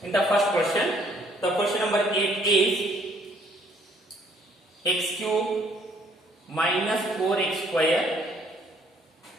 In the first question, the question number 8 is x cube minus 4x square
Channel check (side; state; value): both; normal; correlation 0.64